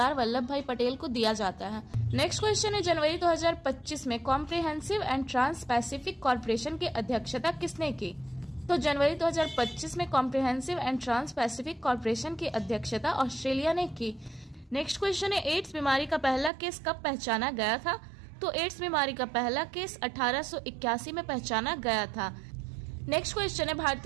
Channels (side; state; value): left; drops out; at 16.5 s